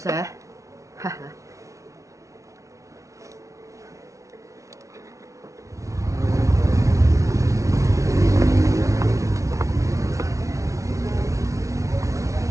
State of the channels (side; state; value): left; late; 0.15 ms